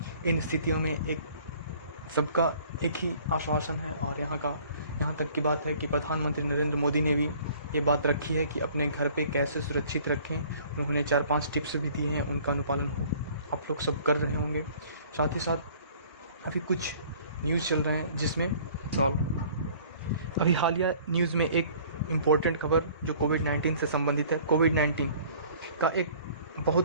इन स्थितियों में सबका एक ही आश्वासन है और यहाँ तक की बात है कि प्रधानमंत्री नरेंद्र मोदी ने भी ये बात रखी है कि अपने घर पे कैसे सुरक्षित रखें। उन्होंने 4-5 टिप्स भी दिए हैं, उनका अनुपालन हो आप लोग सब कर रहे होंगे। साथ ही साथ अभी कुछ न्यूज़ चल रहे हैं जिसमें अभी हालिया न्यूज़ में एक इम्पोर्टेंट खबर जो कोविड-19 से संबंधित है। कोविड-19 का एक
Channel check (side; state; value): both; inverted; correlation -0.53